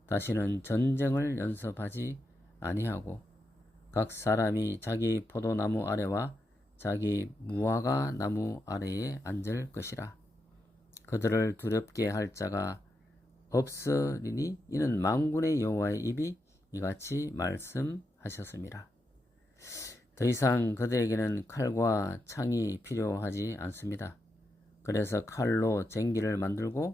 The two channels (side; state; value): both; normal; correlation 0.85